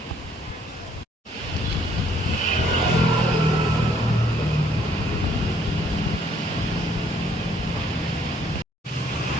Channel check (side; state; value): both; normal; correlation 0.64